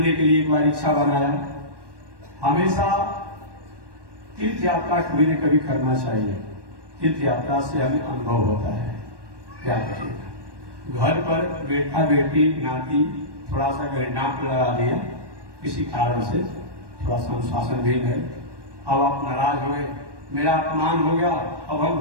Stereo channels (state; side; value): late; left; 1.2 ms